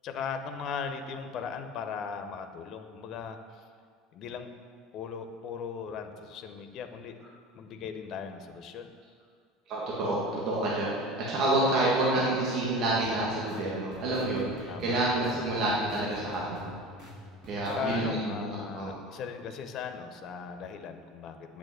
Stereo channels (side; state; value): both; normal; correlation 0.33